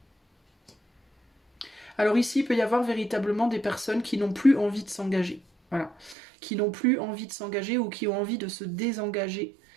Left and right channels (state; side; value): drops out; left; at 6.2 s